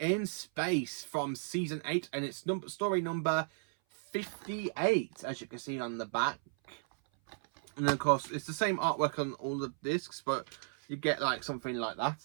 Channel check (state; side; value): silent; left; 55 dB below the other